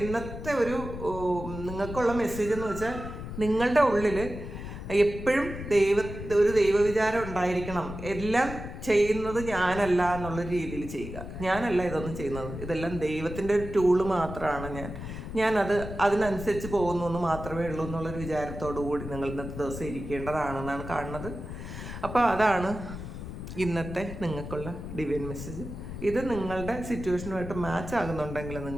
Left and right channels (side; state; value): left; noise; rumble, 9 dB below the sound